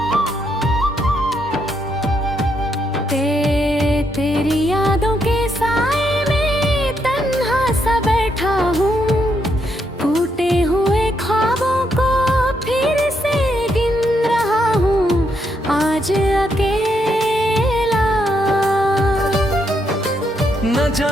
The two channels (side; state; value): both; normal; correlation 0.77